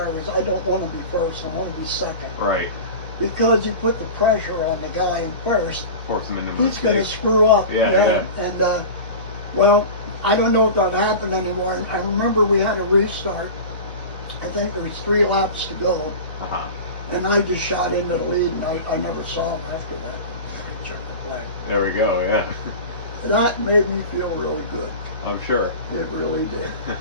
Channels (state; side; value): inverted; both; correlation -0.32